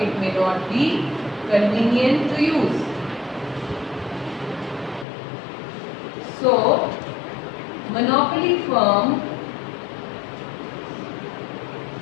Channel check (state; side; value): drops out; right; at 5.1 s